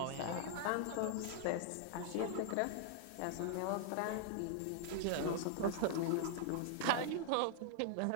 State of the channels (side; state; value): both; different; correlation -0.01